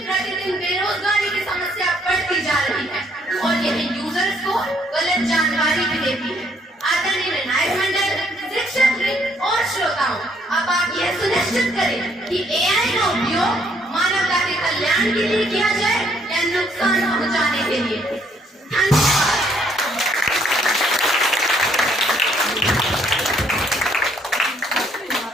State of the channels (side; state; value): both; normal; correlation 0.67